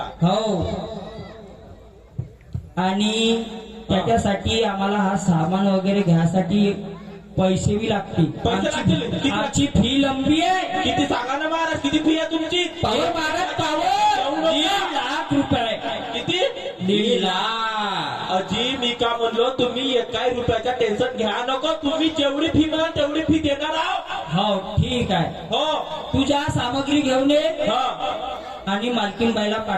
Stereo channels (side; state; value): both; identical; correlation 1.00